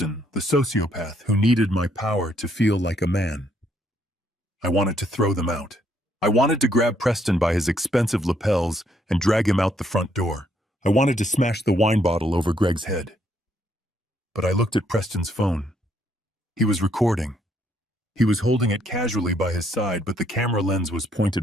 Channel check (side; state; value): both; normal; correlation 0.71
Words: the sociopath who needed my power to feel like a man. I wanted to throw them out. I wanted to grab Preston by his expensive lapels and drag him out the front door. I wanted to smash the wine bottle over Greg's head. But I looked at Preston's phone. He was recording. He was holding it casually by his side, but the camera lens was